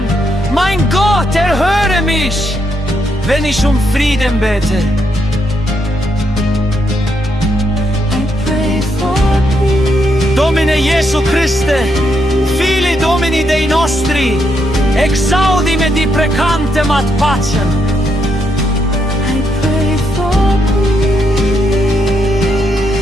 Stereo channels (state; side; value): normal; both; correlation 0.79